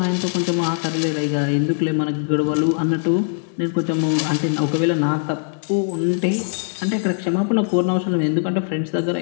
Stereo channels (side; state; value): right; silent; digital silence